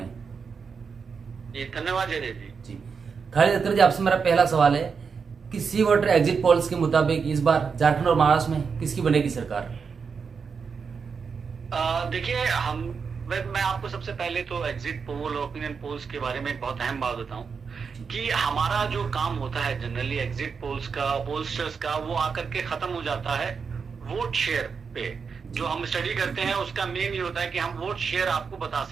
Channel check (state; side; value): quieter; left; 5.7 dB